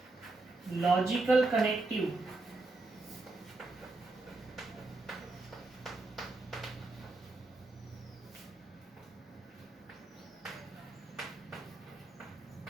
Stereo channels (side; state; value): left; quieter; 3.2 dB